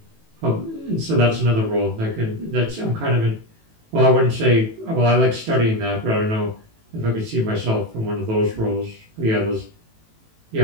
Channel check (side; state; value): left; late; 18 ms